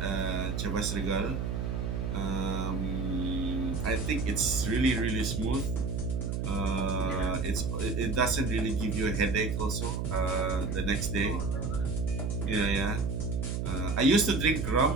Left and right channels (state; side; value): noise; right; hum, 1 dB below the sound